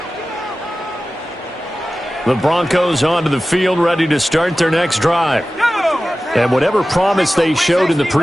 The Broncos onto the field, ready to start their next drive. And whatever promise they showed in the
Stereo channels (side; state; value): both; normal; correlation 0.95